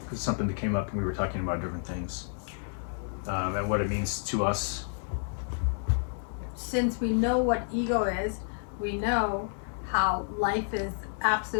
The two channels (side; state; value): right; silent; digital silence